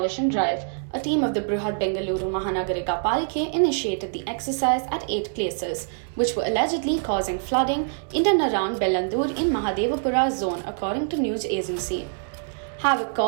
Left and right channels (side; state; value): left; silent; digital silence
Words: drive. A team of the Brihad Bengaluru Mahanagarika Palike initiated the exercise at 8 places, which were allegedly causing flooding in and around Bellandur in Mahadevapura zone, according to news agency. Havoc